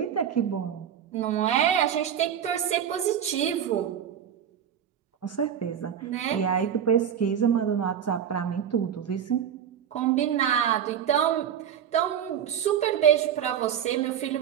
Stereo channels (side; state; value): left; quieter; 9.0 dB